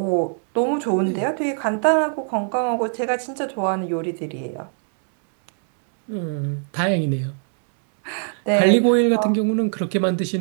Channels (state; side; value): silent; left; digital silence